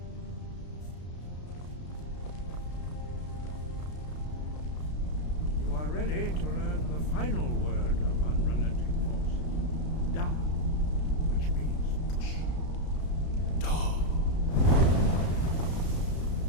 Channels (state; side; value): late; right; 33 ms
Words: You are ready to learn the final word of unrelenting force. Da, which means push. Da.